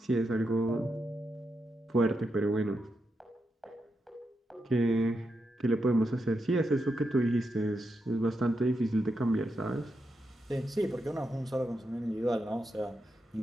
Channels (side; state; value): both; normal; correlation 0.85